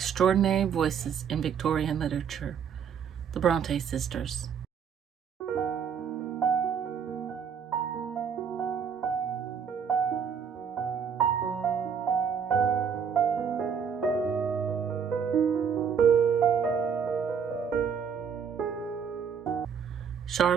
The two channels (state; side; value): quieter; left; 7.1 dB